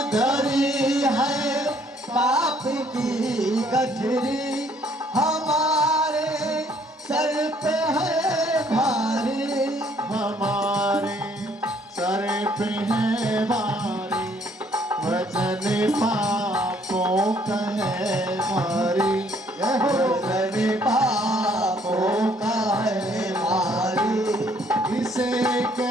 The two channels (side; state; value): both; normal; correlation 0.64